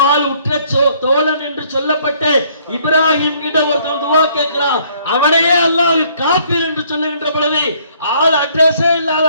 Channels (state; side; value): inverted; both; correlation -0.63